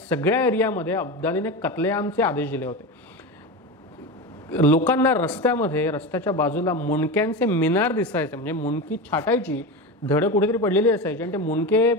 एरियामध्ये अब्दालीने कत्लेआमचे आदेश दिले होते. लोकांना रस्त्यामध्ये, रस्त्याच्या बाजूला मुंडक्यांचे मिनार दिसायचे, म्हणजे मुंडकी छाटायची, धड कुठेतरी पडलेली असायची आणि ते मुंडके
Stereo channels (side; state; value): both; normal; correlation 0.22